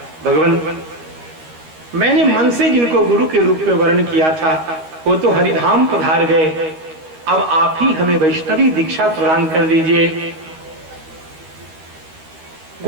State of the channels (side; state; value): left; late; 13 ms